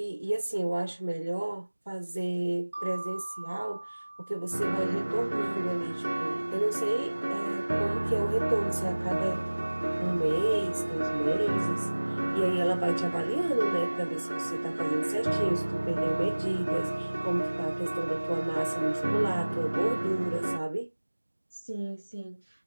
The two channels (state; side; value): inverted; both; correlation -1.00